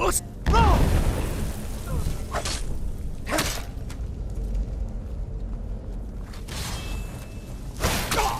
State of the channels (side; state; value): both; identical; correlation 1.00